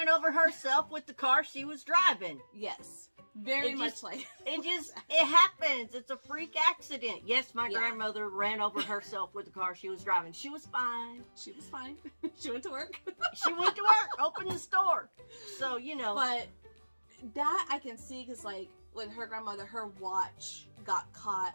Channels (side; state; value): both; inverted; correlation -1.00